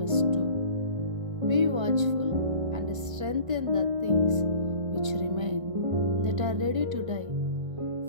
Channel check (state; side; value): late; left; 1.6 ms